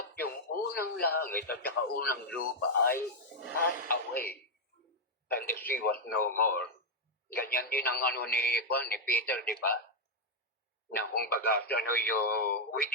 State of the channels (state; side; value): normal; both; correlation -0.01